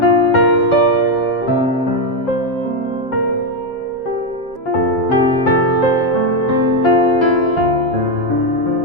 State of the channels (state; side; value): late; right; 7.3 ms